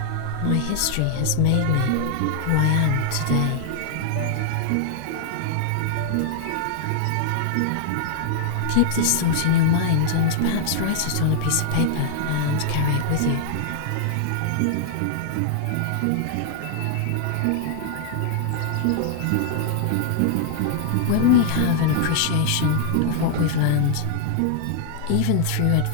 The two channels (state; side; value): different; both; correlation -0.01